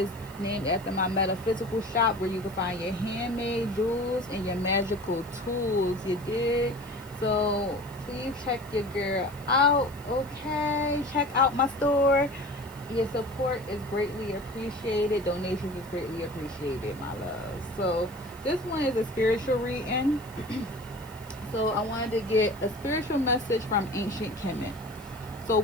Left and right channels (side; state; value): left; noise; hiss, 23 dB below the sound